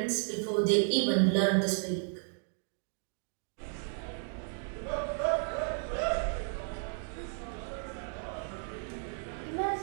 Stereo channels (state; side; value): silent; left; 55 dB below the other